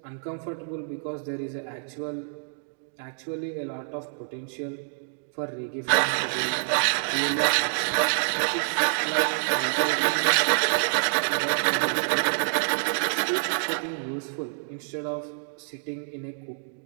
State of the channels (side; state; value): left; silent; digital silence